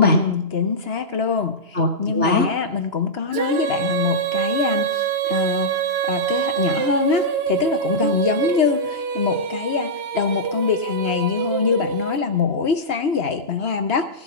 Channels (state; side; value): late; left; 2.9 ms